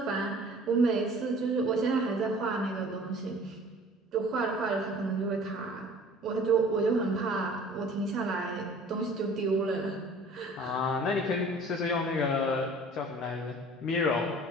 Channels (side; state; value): both; normal; correlation 0.48